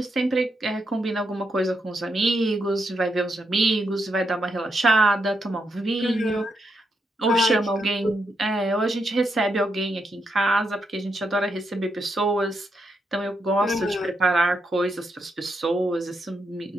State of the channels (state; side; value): normal; both; correlation 0.81